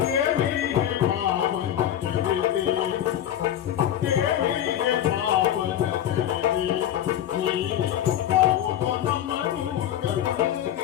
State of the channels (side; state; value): right; quieter; 11.1 dB